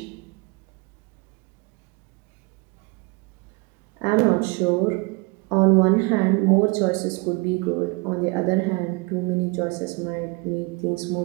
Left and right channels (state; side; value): quieter; left; 28.1 dB